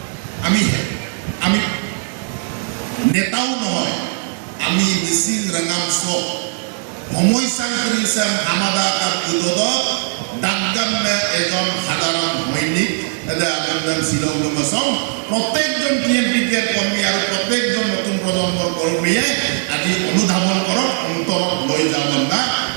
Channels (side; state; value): left; silent; digital silence